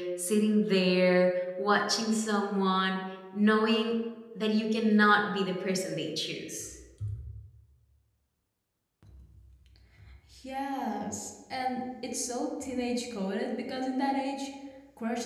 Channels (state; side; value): identical; both; correlation 1.00